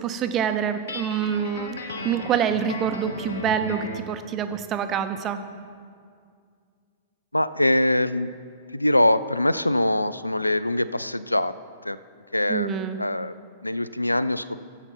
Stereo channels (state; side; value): inverted; both; correlation -0.56